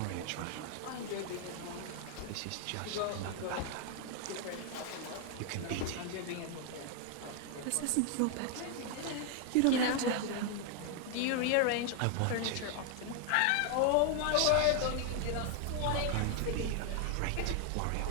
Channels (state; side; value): different; both; correlation 0.00